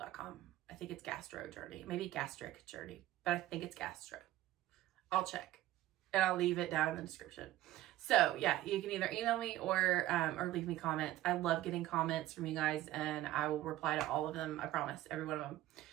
I think it's gastro journey, maybe gastric journey, but I think it's gastro. I'll check and I'll leave it down in the description. So yeah, you can either email me or leave me comments. I love getting comments from you guys, and I will reply to all of them. I promise, every one of them.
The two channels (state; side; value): quieter; left; 14.9 dB